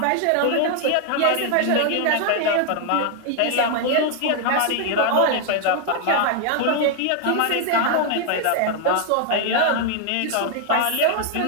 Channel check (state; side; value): different; both; correlation 0.00